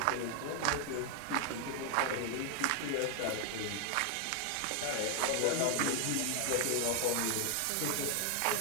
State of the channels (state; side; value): different; both; correlation 0.00